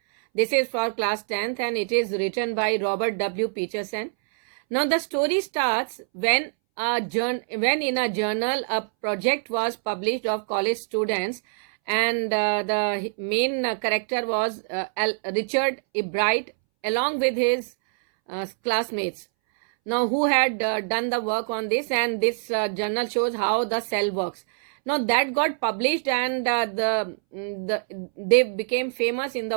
This is for class 10th and it is written by Robert W. Peterson. Now the story starts when in a journal a project was published of college students, and the main character was Richard E. Bright along with his classmates. Now who had done the work on this, and this journal shows how the cell works. Now that got published, and they became famous in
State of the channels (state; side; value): silent; left; 62 dB below the other